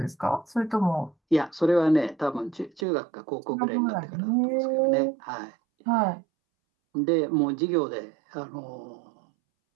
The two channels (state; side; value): drops out; left; at 2.9 s